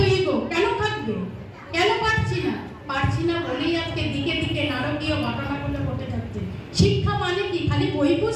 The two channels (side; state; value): both; identical; correlation 1.00